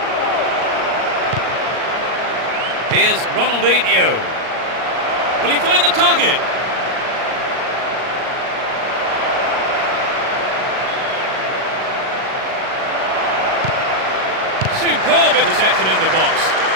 Here's Ronaldinho. Will he find the target? Superb interception in the box.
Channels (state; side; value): late; left; 38 ms